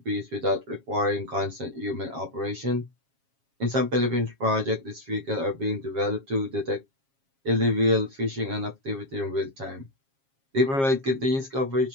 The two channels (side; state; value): left; late; 7.4 ms